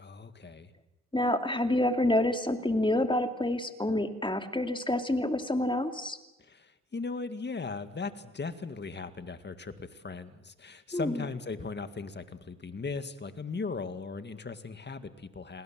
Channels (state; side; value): normal; both; correlation 0.64